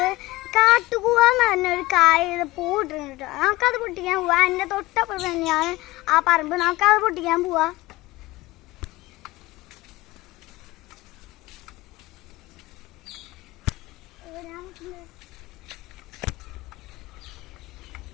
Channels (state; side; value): quieter; right; 19.8 dB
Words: കാട്ടുകൂവ എന്ന് പറഞ്ഞൊരു കായ പൂവിട്ടുണ്ട്. നമുക്കത് പൊട്ടിക്കാൻ പോവാ. എൻ്റെ തൊട്ടപ്പുറത്ത് തന്നെയാണ് ആ പറമ്പ്. നമുക്കത് പൊട്ടിക്കാൻ പോവാ.